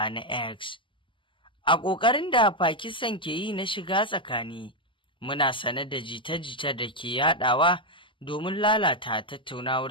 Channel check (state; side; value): late; right; 0.25 ms